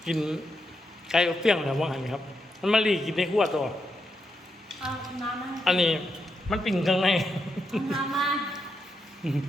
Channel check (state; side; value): normal; both; correlation 0.83